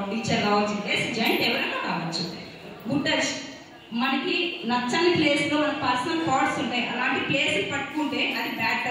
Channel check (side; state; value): both; identical; correlation 1.00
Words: టీచర్ కావచ్చు, అసిస్టెంట్ ఎవరైనా కావచ్చు. గుడ్ టచ్ మనకి నచ్చని ప్లేస్ లో మన పర్సనల్ థాట్స్ ఉంటాయి. అలాంటి ప్లేస్ పట్టుకుంటే అది బ్యాడ్